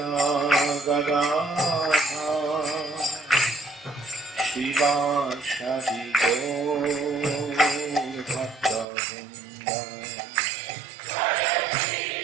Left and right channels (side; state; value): left; drops out; at 8.8 s